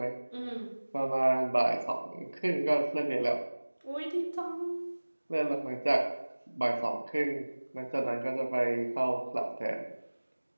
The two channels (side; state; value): both; inverted; correlation -1.00